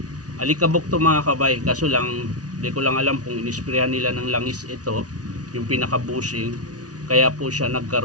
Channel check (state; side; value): late; left; 0.68 ms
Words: alikabok to mga kabay. Kaso lang, di ko lang alam kung inisprayan nila ng langis ito, yung pinaka-bushing. Kaya po siya